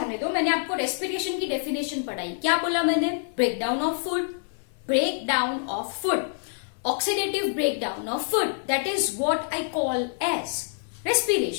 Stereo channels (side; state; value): right; silent; digital silence